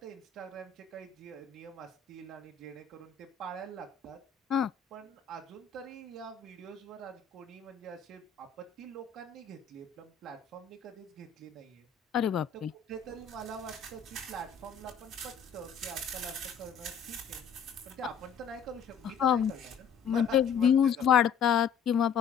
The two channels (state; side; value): quieter; right; 7.1 dB